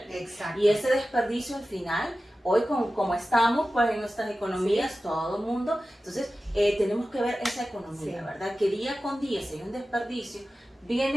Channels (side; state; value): both; normal; correlation 0.94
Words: Exacto. Y ese desperdicio al final, hoy como estamos pues en nuestras economías, todo el mundo, entonces tenemos que ver esa economía, ¿verdad? Que día con día, si hay un desperdicio,